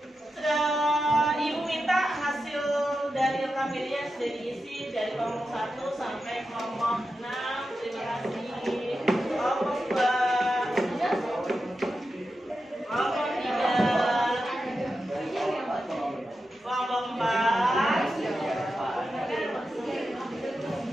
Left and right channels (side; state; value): both; normal; correlation 0.90